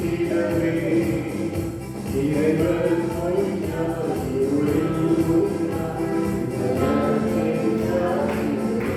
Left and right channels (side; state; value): both; identical; correlation 1.00